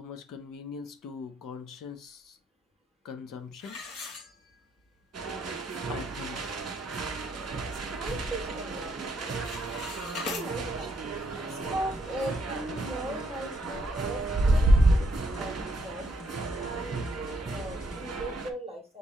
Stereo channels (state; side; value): normal; both; correlation 0.74